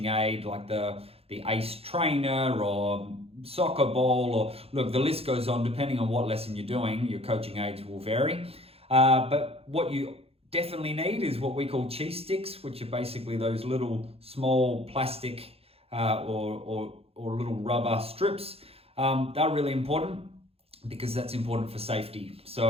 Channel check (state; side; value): late; left; 0.29 ms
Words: aid like the ACE trainer or soccer ball, or look, the list goes on. Depending on what lesson you're doing, your coaching aids will vary. But what you definitely need is what we call cheese sticks, which are basically those little small plastic or little rubber strips. They're really important because that's important for safety.